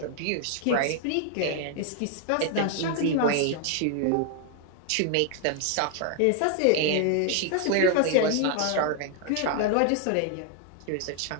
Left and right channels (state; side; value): different; both; correlation 0.01